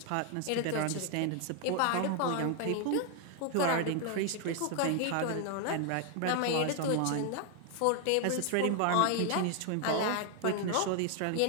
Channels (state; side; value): different; both; correlation 0.00